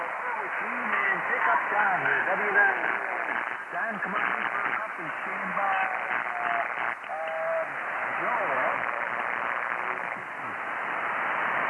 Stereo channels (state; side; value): identical; both; correlation 1.00